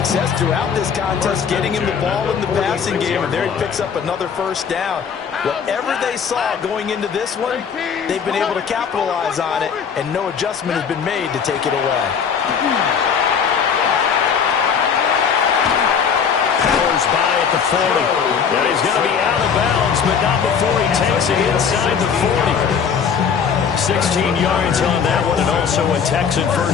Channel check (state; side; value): quieter; right; 6.8 dB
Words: throughout this contest, getting him the ball in the passing game, and there he picks up another first down. Whatever they saw going into this one, they've been able to capitalize on it, and no adjustment has been made to take it away. Powers by at the 40. And he's going to be out of bounds, but not before he takes it inside the 40. 16 yards on that one, and also a Texan